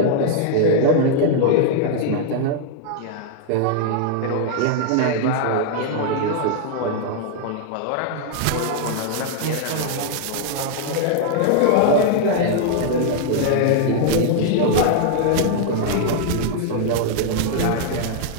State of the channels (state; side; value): different; both; correlation -0.01